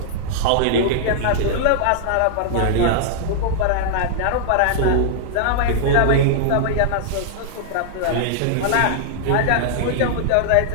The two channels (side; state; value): both; different; correlation -0.01